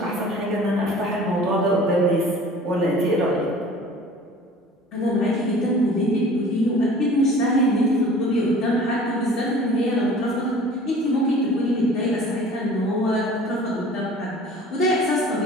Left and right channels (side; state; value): both; normal; correlation 0.46